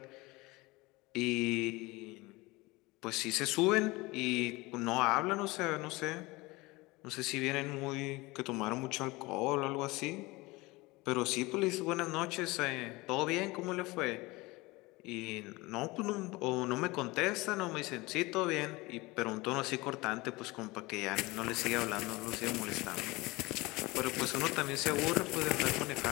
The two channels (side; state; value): right; quieter; 22.4 dB